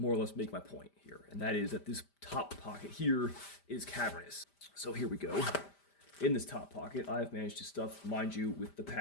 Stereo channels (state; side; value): late; right; 5.0 ms